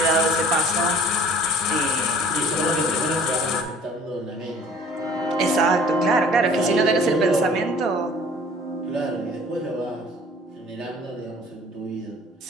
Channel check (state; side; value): normal; both; correlation 0.51